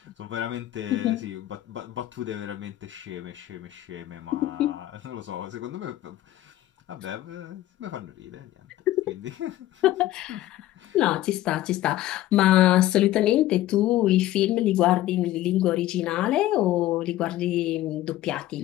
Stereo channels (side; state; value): right; quieter; 14.7 dB